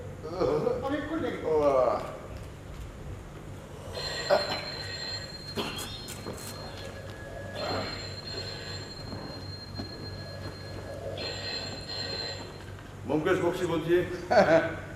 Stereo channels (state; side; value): identical; both; correlation 1.00